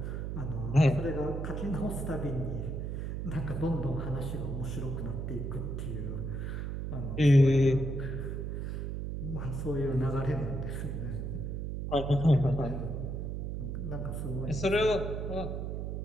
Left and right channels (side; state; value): right; noise; hum, 4 dB below the sound